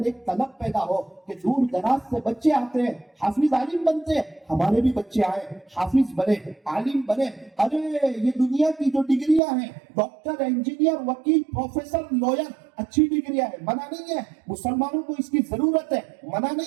ایک طلب پیدا ہو کہ دور دراز سے بچے آتے ہیں، حافظ عالم بنتے ہیں، ہمارے بھی بچے آئے، حافظ بنے، عالم بنے۔ ارے یہ دنیا کی جو ڈگریاں ہیں، ڈاکٹر، انجینئر، وکیل، پروفیسر، لوئر، اچھی ڈگریاں ہیں، منع نہیں ہے، مسلمانوں کو اس کی ضرورت ہے، منع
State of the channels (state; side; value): drops out; left; at 9.4 s